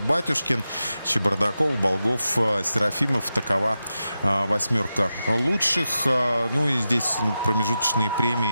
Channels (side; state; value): both; inverted; correlation -0.91